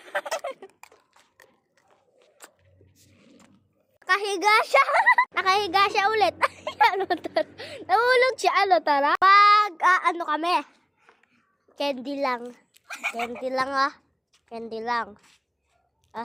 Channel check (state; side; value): identical; both; correlation 1.00